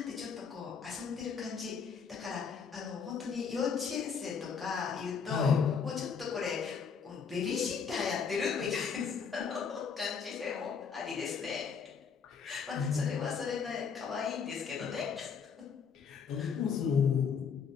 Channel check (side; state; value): right; quieter; 6.2 dB